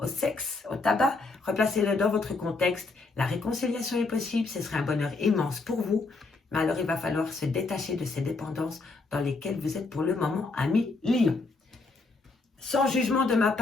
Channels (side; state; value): right; quieter; 3.7 dB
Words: sexe, au tabac. Replacez-le dans votre contexte. La réconciliation est possible, ce serait un bonheur immense pour vous. Mais alors, il va falloir se détacher de ces dépendances dans lesquelles vous êtes pour le moment, ami Lion. Sans jugement de ma